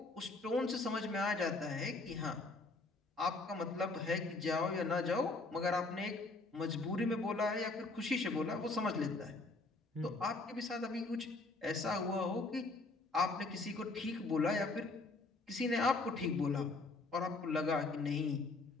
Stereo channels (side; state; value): right; quieter; 3.4 dB